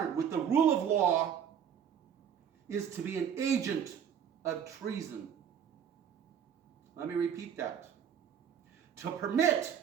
with the rule of law is to be an agent of treason. Let me repeat that. To permit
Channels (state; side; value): quieter; left; 8.4 dB